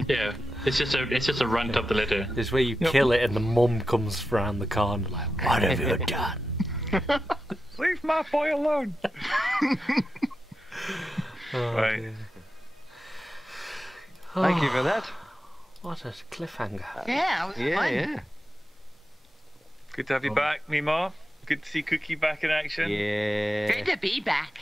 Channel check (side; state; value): both; normal; correlation 0.90